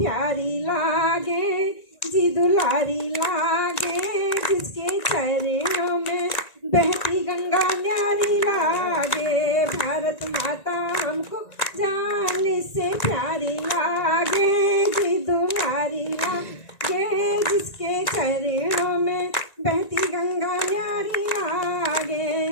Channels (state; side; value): late; right; 1.9 ms